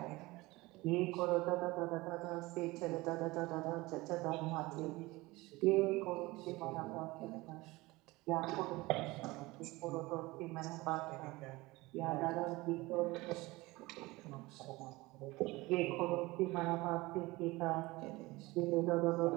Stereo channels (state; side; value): quieter; left; 21.2 dB